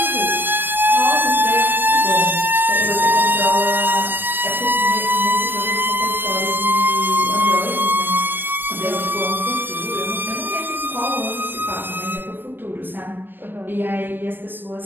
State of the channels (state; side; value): late; left; 0.095 ms